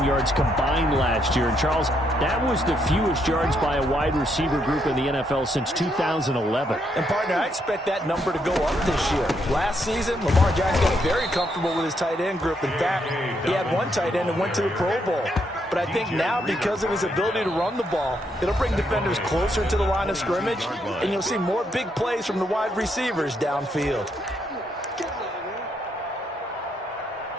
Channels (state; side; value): normal; both; correlation 0.76